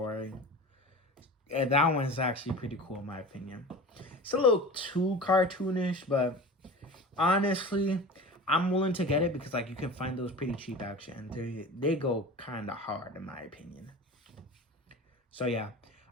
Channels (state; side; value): normal; both; correlation 0.34